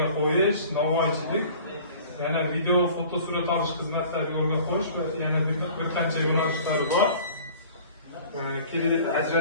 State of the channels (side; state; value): both; inverted; correlation -0.46